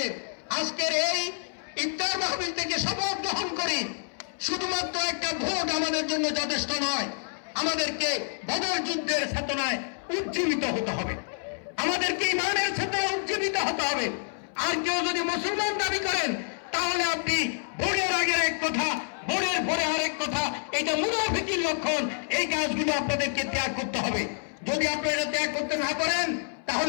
আজকের এই ইফতার মাহফিল থেকে শপথ গ্রহণ করি, শুধুমাত্র একটা ভোট আমাদের জন্য যথেষ্ট নয়, আমাদেরকে বদর যুদ্ধের চেতনায় উজ্জীবিত হতে হবে, আমাদেরকে ইমানের চেতনায় উজ্জীবিত হতে হবে। আর কেউ যদি মুসলমান দাবি করেন তাহলে আপনি ভোটের আগের এক কথা, ভোটের পরে আরেক কথা, এটা মুনাফিকির লক্ষণ। এই কাজগুলো আপনাদেরকে ত্যাগ করতে হবে। যদি আপনারা ত্যাগ করতে না পারেন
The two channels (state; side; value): silent; right; 59 dB below the other